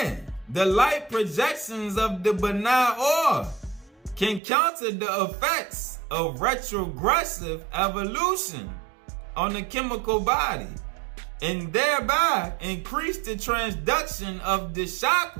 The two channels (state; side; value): drops out; left; at 4.4 s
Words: the light projections of the pineal can counter the effects of retrogressive evolution on the chemical body and thereby increase the transduction of the